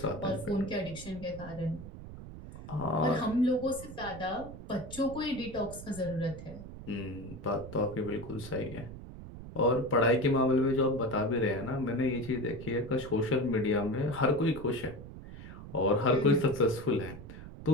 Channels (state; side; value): noise; right; rumble, 13 dB below the sound